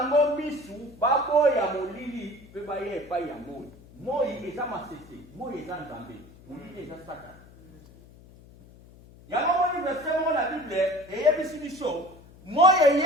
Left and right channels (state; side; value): noise; left; hum, 23 dB below the sound